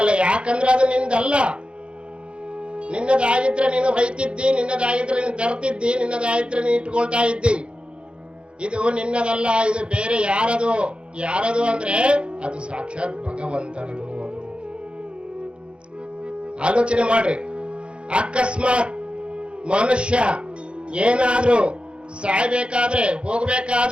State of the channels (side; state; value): left; late; 0.057 ms